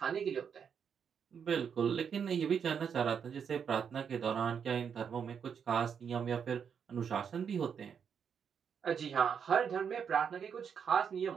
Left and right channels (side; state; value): left; quieter; 7.2 dB